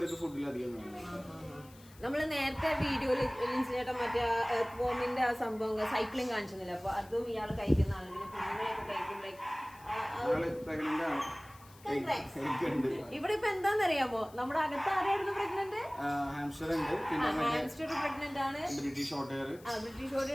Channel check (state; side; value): noise; left; hiss, 24 dB below the sound